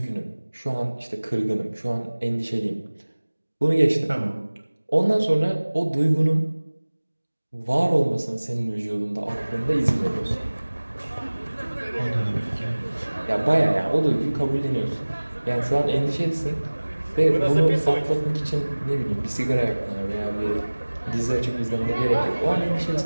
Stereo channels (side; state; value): both; inverted; correlation -1.00